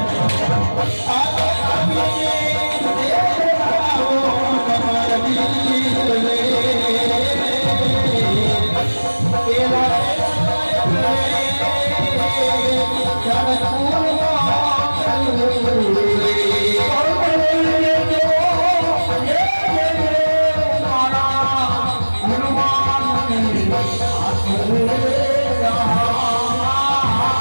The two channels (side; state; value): both; inverted; correlation -1.00